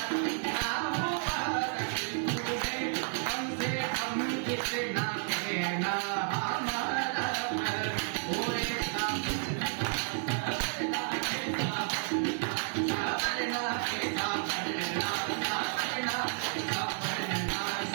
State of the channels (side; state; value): left; silent; 57 dB below the other